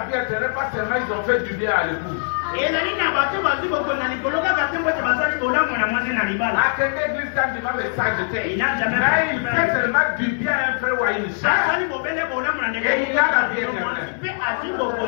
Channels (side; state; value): right; silent; digital silence